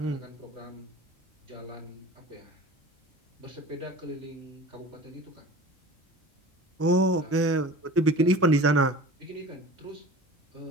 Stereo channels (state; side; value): normal; both; correlation 0.39